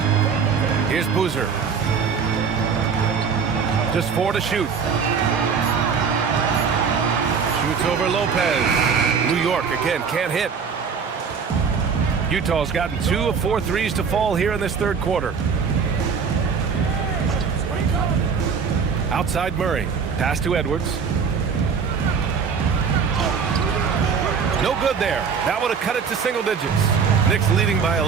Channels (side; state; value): left; quieter; 6.0 dB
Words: Here's Boozer. Just 4 to shoot. Shoots over Lopez. New York again can't hit. Utah's gotten 2 of 4 threes to fall here in this third quarter. Outside Murray. Pass to Edwards. No good there. That would have cut it to single digits. Knicks leading by